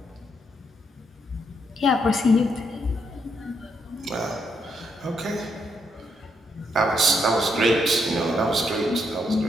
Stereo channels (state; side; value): normal; both; correlation 0.77